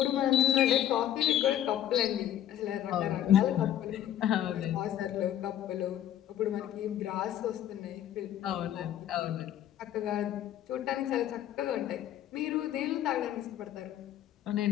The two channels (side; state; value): right; quieter; 11.5 dB